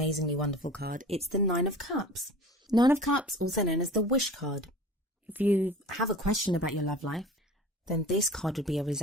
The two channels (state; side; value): normal; both; correlation 0.40